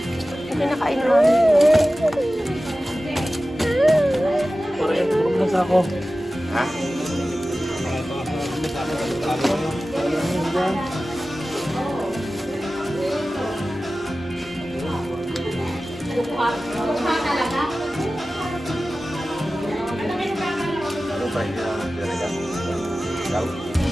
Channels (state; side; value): normal; both; correlation 0.95